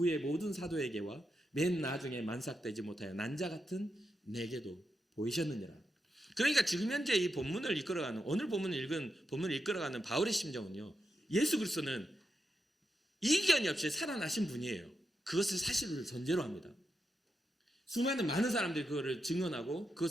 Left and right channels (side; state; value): both; normal; correlation 0.86